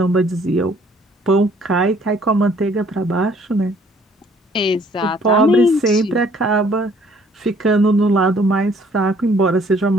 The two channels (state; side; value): normal; both; correlation 0.60